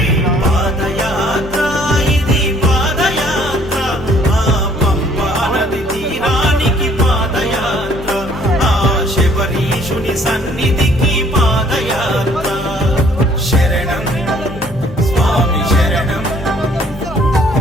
పాదయాత్ర ఇది పాదయాత్ర. ఆ పంపా నది తీరానికి పాదయాత్ర. ఆ శబరీషుని సన్నిధికి పాదయాత్ర. శరణం స్వామి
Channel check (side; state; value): both; normal; correlation 0.60